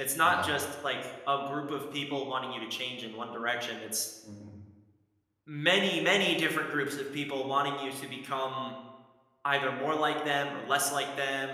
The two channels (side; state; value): both; identical; correlation 1.00